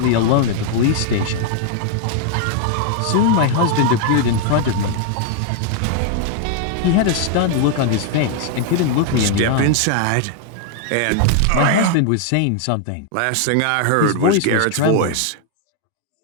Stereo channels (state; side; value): different; both; correlation 0.00